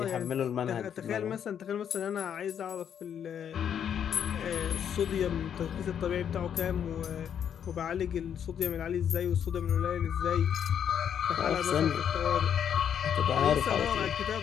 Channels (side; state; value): right; quieter; 8.7 dB